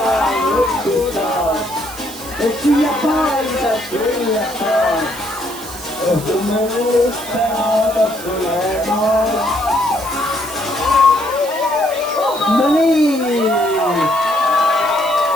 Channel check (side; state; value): right; noise; hiss, 14 dB below the sound